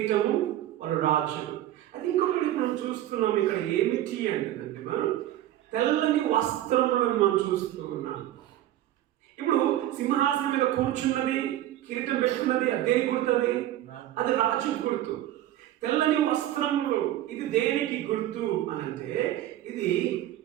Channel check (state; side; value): quieter; left; 13.4 dB